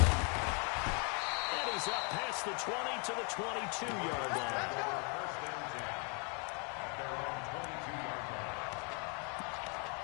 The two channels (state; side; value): quieter; right; 36.0 dB